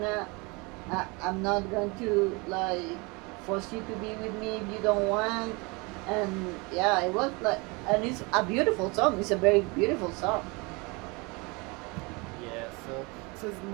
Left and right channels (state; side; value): quieter; left; 27.6 dB